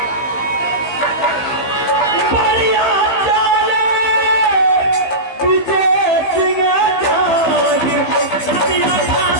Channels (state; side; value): late; right; 15 ms